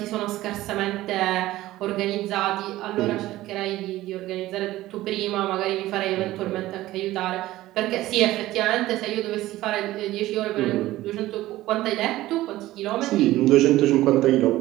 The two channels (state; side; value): quieter; left; 16.2 dB